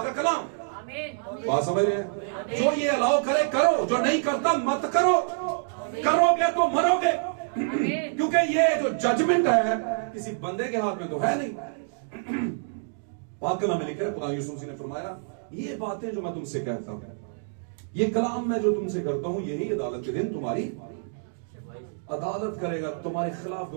का कलाम। बात समझ रहे हैं? जो ये अलाउ करे करो, जो नहीं करता मत करो। करोगे तो मरोगे। क्योंकि ये जो जजमेंट है किसी बंदे के हाथ में तो है नहीं। पाक कलाम में लिखा है, खुदा यीशु मसीह ने फरमाया ये बातें जो मैं तुमसे कहता हूं, ये कलाम मैं जो तुमसे करता हूं, यही अदालत के दिन तुम्हारी अदालत करेगा, तुम्हारे खिलाफ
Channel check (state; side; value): silent; left; digital silence